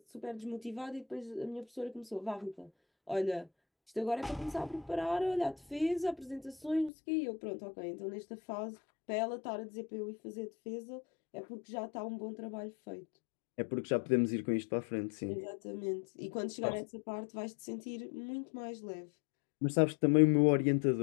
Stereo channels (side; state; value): right; drops out; at 6.9 s